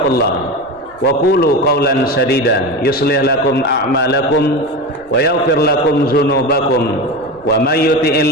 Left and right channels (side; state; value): right; noise; rumble, 27 dB below the sound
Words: wa qulu qawlan sadida yuslih lakum a'malakum wa yaghfir lakum dzunubakum wa may